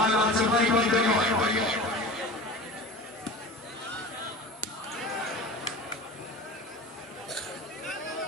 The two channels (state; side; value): normal; both; correlation 0.34